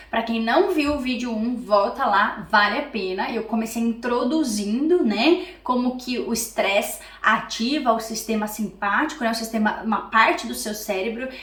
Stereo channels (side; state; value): both; identical; correlation 1.00